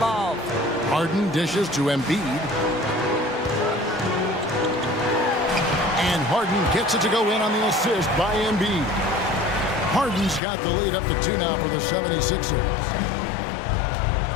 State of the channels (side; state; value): right; drops out; at 10.4 s